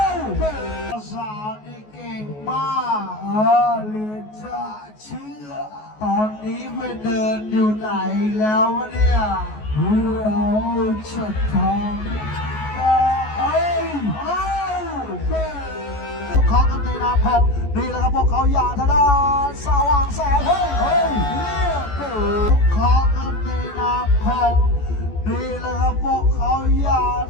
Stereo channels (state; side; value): late; right; 14 ms